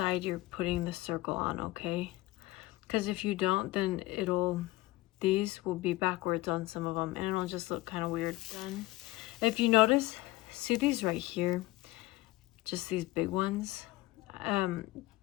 you're putting the circle on, okay? Because if you don't, then these will be backwards on some of them and it'll just look kind of weird. Then, if you notice, see these right here, just these big ones.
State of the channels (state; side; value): quieter; right; 19.1 dB